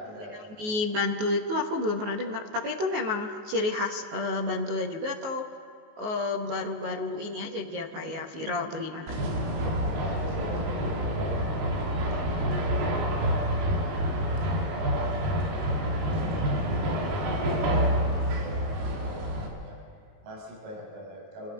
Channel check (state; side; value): late; left; 19 ms